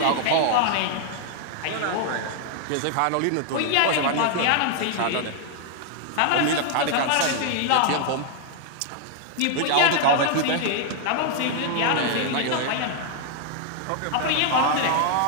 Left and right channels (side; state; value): both; different; correlation 0.00